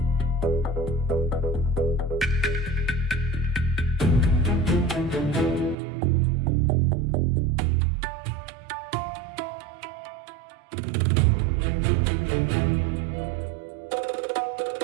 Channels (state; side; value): drops out; left; at 5.8 s